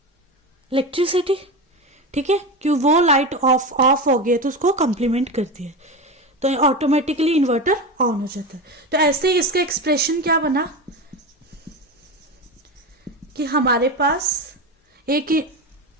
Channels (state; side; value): normal; both; correlation 0.21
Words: इलेक्ट्रिसिटी। ठीक है, क्यों? वो लाइट ऑफ हो गई तो उसको कंप्लीमेंट करती है, तो ऑटोमेटिकली इन्वर्टर ऑन हो जाता है। तो ऐसे ही इसका एक्सप्रेशन क्या बना कि हमारे पास एक